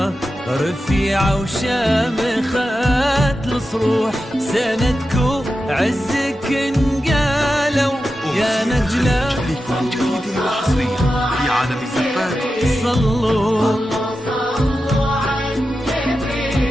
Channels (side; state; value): both; normal; correlation 0.91